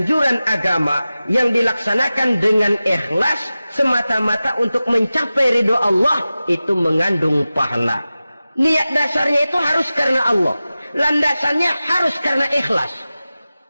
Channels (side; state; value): both; inverted; correlation -0.95